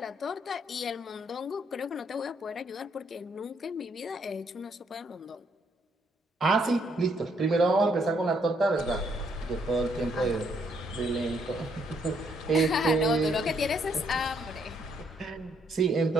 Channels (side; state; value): both; normal; correlation 0.71